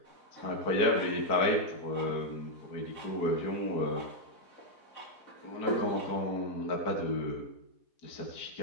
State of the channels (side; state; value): right; late; 4.8 ms